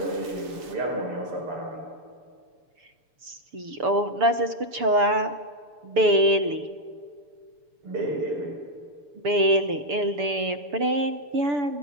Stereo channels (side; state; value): left; late; 7.0 ms